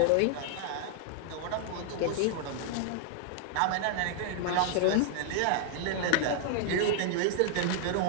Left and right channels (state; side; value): different; both; correlation 0.00